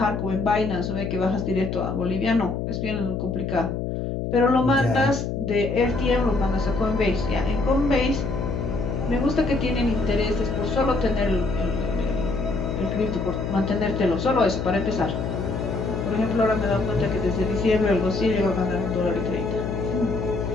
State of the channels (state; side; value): noise; left; hum, 3 dB below the sound